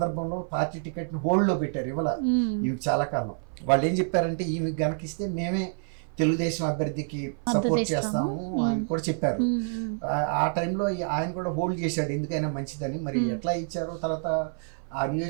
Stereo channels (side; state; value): left; silent; 56 dB below the other